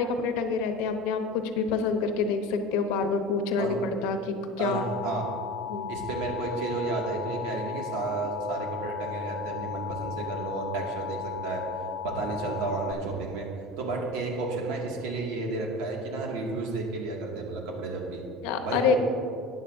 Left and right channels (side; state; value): both; normal; correlation 0.32